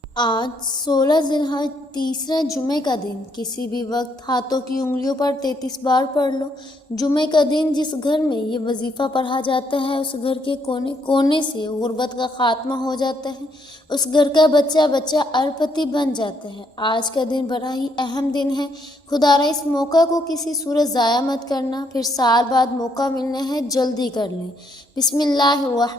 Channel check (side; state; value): both; normal; correlation 0.73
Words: آج 16 ذی الحج تیسرا جمعے کا دن کسی بھی وقت ہاتھوں کی انگلیوں پر 33 بار پڑھ لو۔ جمعے کا دن جس گھر میں یہ وظیفہ پڑھا جاتا ہے اس گھر کے کونے کونے سے غربت کا خاتمہ ہو جاتا ہے، اس گھر کا بچہ بچہ اربپتی بن جاتا ہے۔ آج کا دن بڑا ہی اہم دن ہے، خدارا اس موقع کو کسی صورت ضائع مت کرنا، پھر سال بعد موقع ملنا ہے، جلدی کر لیں۔ بسم اللہ